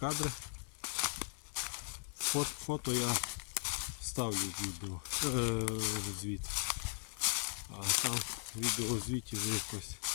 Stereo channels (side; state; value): right; silent; 52 dB below the other